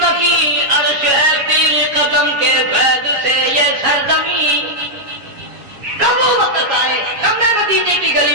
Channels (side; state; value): left; late; 7.3 ms